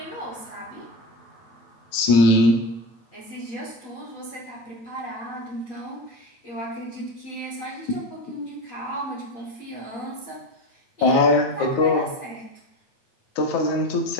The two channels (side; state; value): right; late; 9.3 ms